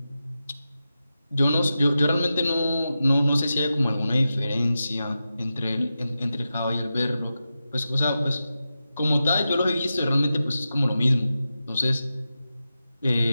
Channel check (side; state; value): both; inverted; correlation -0.91